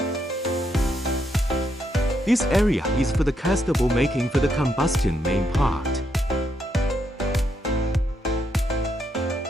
This area is for the castable making for the combustion main part,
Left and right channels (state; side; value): normal; both; correlation 0.78